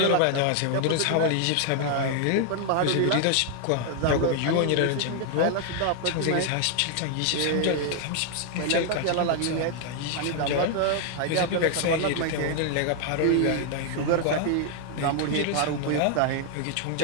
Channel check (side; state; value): both; different; correlation 0.00